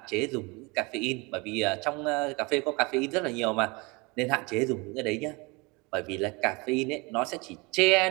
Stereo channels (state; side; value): quieter; left; 27.0 dB